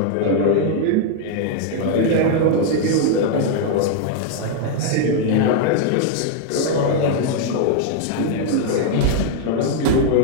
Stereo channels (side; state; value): both; different; correlation 0.00